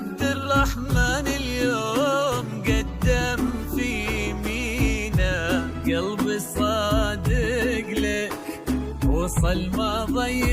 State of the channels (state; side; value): identical; both; correlation 1.00